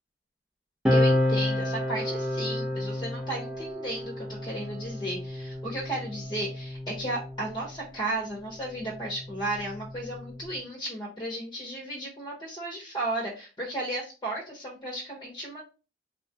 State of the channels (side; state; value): both; normal; correlation 0.59